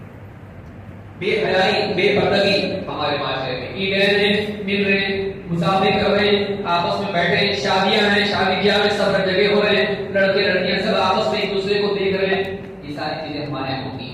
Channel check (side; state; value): both; identical; correlation 1.00